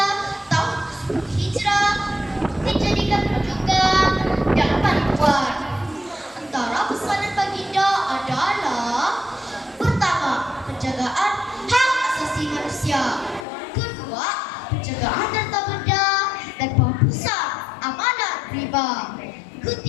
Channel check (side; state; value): right; drops out; at 13.5 s